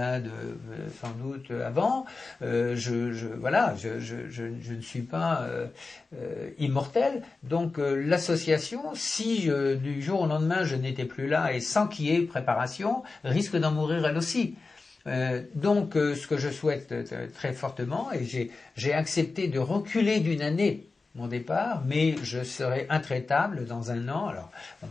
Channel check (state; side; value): quieter; right; 3.9 dB